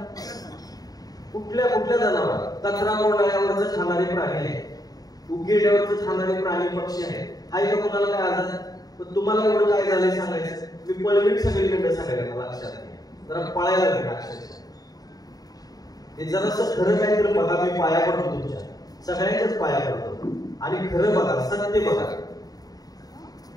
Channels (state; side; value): late; right; 0.18 ms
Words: कुठल्या कुठल्या जनावर? कचरा कोंडाळ्यावरच खाणारे प्राणी आहे, उघेड्यावरच खाणारे प्राणी पक्षी आहे का? कुणाला काय आजार? पण तुम्हाला एवढं काय झालंय सांगायचं? मी पळवीत सगळीकडे सांगायला लक्षात नाही, जरा पळायला लागेल अक्षरशः. हे जरासं खरं काय तर बघा, मी पाया पडतो तुमच्या सगळ्यांच्याच पाया पडतो आणि खरं बघा, सत्य बघा.